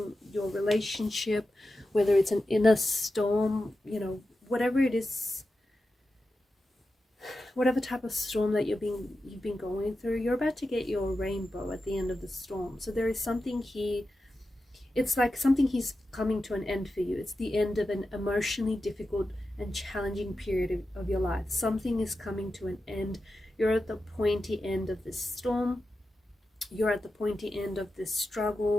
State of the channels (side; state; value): both; normal; correlation 0.91